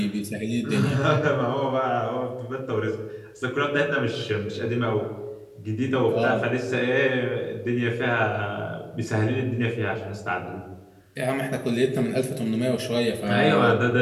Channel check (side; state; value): both; identical; correlation 1.00